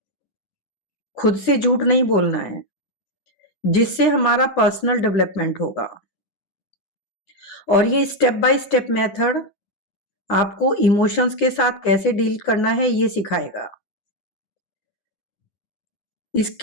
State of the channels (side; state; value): right; late; 10 ms